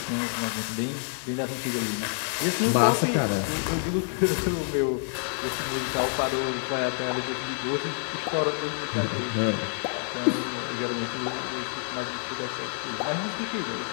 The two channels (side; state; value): right; silent; digital silence